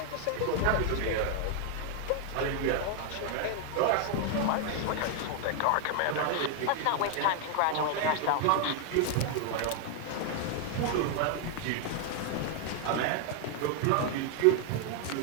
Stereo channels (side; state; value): both; different; correlation 0.00